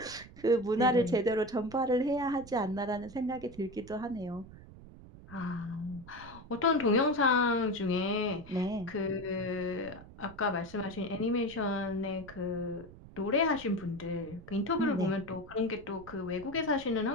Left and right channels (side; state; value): right; noise; rumble, 18 dB below the sound